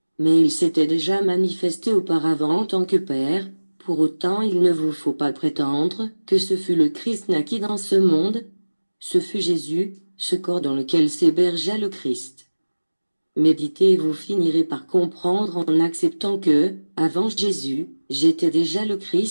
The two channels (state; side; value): inverted; both; correlation -1.00